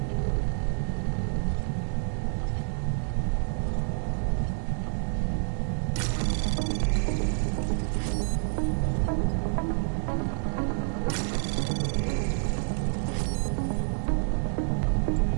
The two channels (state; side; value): silent; left; digital silence